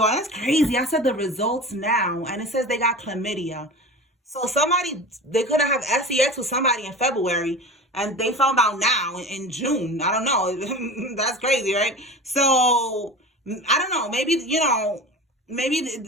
that's crazy. I said the results now, and it says they got chlamydia. So they could have sex with somebody in February, and they found out now in June. I don't know. That's crazy, right? So, I don't know. Maybe, you know,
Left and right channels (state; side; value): normal; both; correlation 0.33